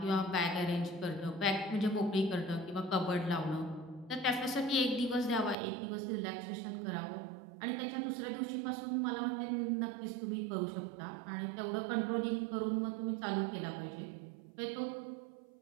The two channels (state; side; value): drops out; left; at 5.6 s